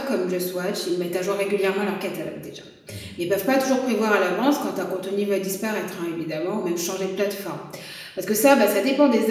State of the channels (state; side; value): identical; both; correlation 1.00